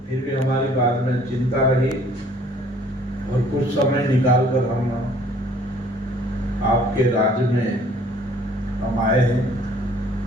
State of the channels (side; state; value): both; normal; correlation 0.57